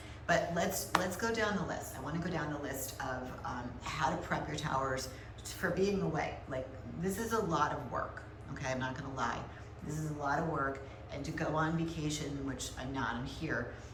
But let's go down the list. I want to go down the list of how to prep your towers for being away. Like, this is a lot of work. Okay, I'm not gonna lie. This is a lot of work, and to go on vacation, which I'm not, I'm here.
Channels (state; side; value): identical; both; correlation 1.00